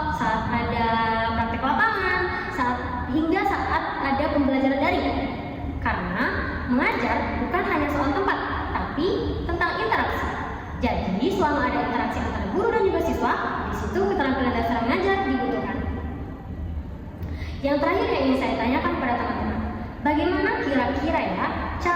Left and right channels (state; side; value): identical; both; correlation 1.00